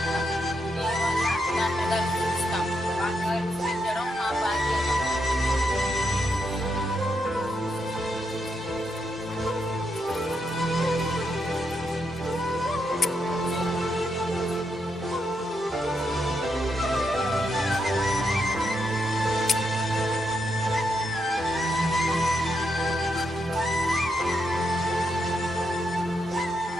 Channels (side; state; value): both; normal; correlation 0.81